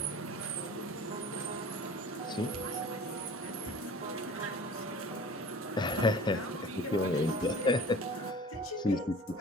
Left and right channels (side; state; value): both; normal; correlation 0.42